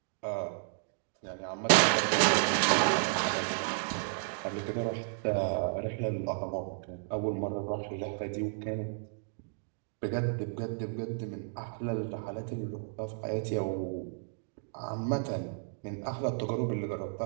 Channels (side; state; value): left; silent; digital silence